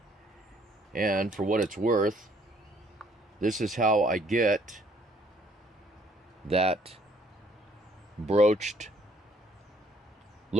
and for what it's worth, this is how I get that broached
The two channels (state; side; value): normal; both; correlation 0.64